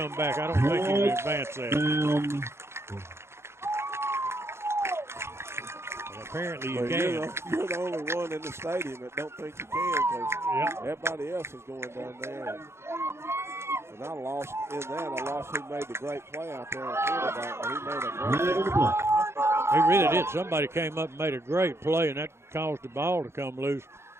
back. I don't think he can advance that. Apparently you can. You're the only one in the stadium that don't think you can because everybody else is going down there. And I lost who made the great play out there in quarterback, but he made a great play. He really did. Somebody came up and made a great play, and that caused the ball to come loose.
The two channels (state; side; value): late; left; 0.12 ms